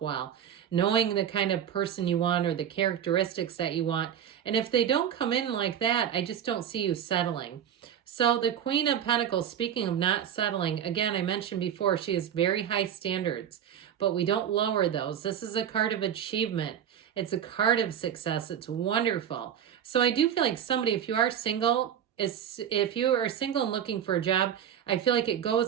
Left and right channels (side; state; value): left; quieter; 9.4 dB